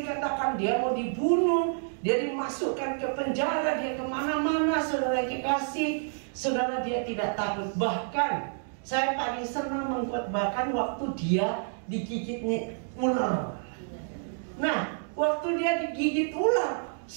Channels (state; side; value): silent; left; digital silence